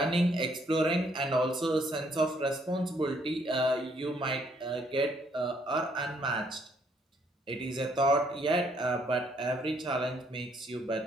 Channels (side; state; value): both; normal; correlation 0.68